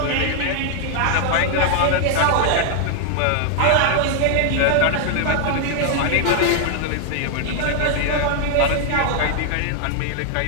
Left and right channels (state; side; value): different; both; correlation 0.00